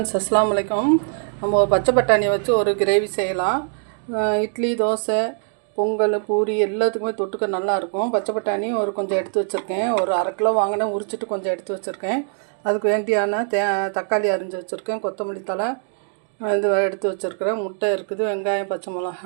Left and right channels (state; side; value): silent; left; 59 dB below the other